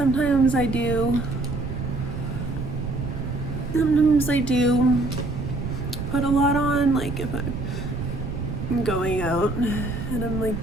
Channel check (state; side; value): noise; right; rumble, 5 dB below the sound